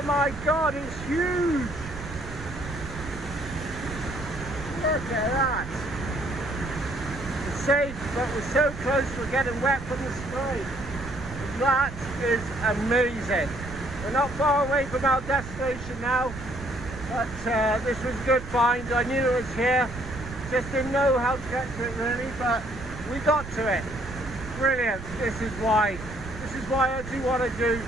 my God, it's huge. Look at that. It's safe, but we're so close we're getting wet from the spray. That is amazing. We're not far away from our destination now, but this was a good find. I knew it was here. Just didn't know how to get to it really, but we got to it. Brilliant. This is why I do what I do.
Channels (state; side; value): noise; right; rumble, 11 dB below the sound